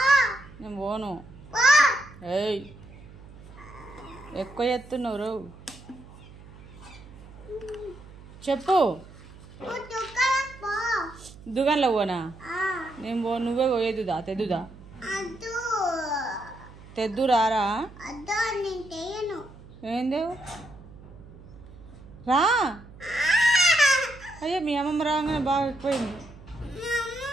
నేను పోను. ఏయ్, ఎక్కువ ఎత్తున్నావు. చెప్పు, దుకాణంలో పోనా? నేను పో, నువ్వే పోయేదుదా? తెద్దుదా? తెద్దు రారా? ఏందేవు రా. అయ్యో, మీ అమ్మమ్మ రాగానే బాగా ఎక్కువైంది.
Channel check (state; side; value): noise; right; hum, 19 dB below the sound